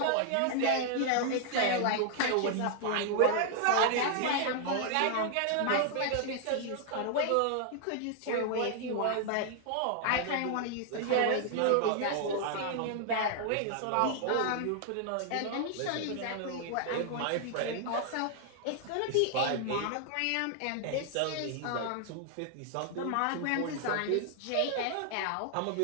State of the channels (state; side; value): different; both; correlation 0.00